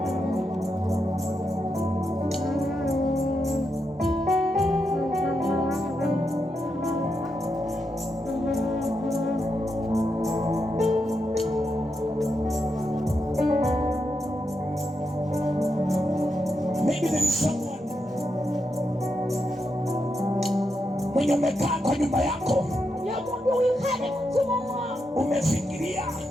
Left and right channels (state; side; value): normal; both; correlation 0.84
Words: Maybe there is someone mwenye umekaa kwa nyumba yako, umefikiria